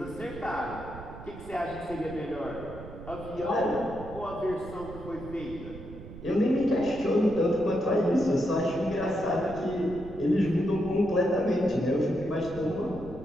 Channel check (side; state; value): right; noise; rumble, 14 dB below the sound